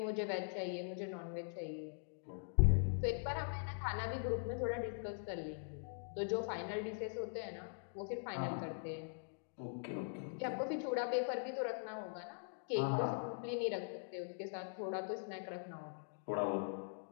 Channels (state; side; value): silent; right; digital silence